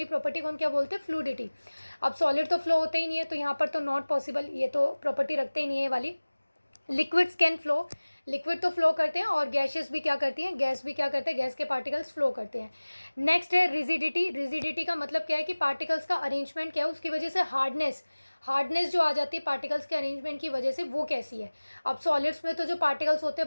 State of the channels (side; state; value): both; inverted; correlation -1.00